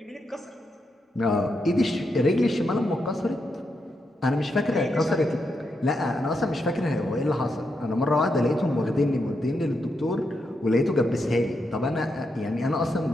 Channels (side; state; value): both; normal; correlation 0.83